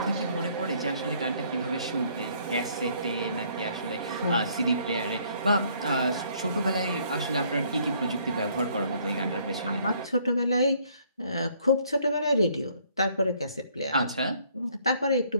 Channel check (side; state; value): both; inverted; correlation -0.64